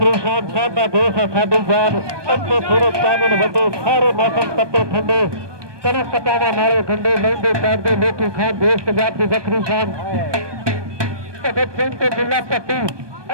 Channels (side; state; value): left; late; 1.2 ms